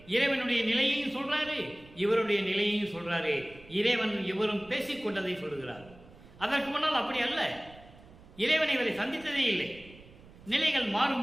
இறைவனுடைய நிலையையும் சொல்றாரு, இவருடைய நிலையையும் சொல்றாரு. இறைவன் இவரும் பேசிக்கொண்டதை சொல்லுகிறார். அதற்கு முன்னால் அப்படி அல்ல, இறைவன் இவரை சந்தித்ததே இல்லை. நிலைகள்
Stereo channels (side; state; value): right; noise; rumble, 22 dB below the sound